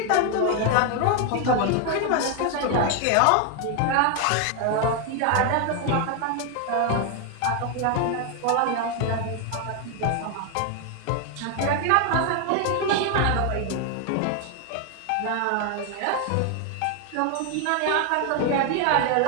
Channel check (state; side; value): different; both; correlation 0.01